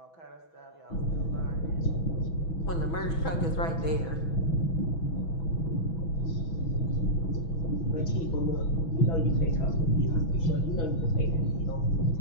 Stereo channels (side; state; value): right; late; 6.1 ms